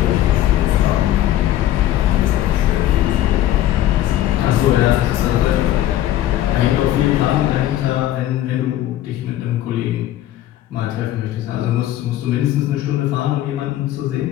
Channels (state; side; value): quieter; right; 13.3 dB